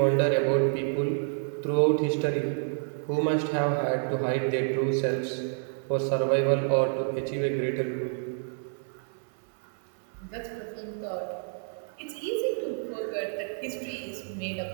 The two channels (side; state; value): left; silent; 59 dB below the other